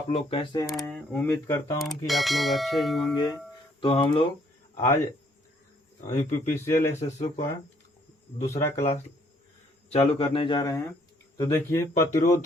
लोग कैसे हैं। उम्मीद करता हूं कि आप लोग अच्छे ही होंगे। तो हम लोग आज यूपीपीसीएल एसएसओ का दूसरा क्लास चालू करने जा रहे हैं। तो देखिए,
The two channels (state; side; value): normal; both; correlation 0.66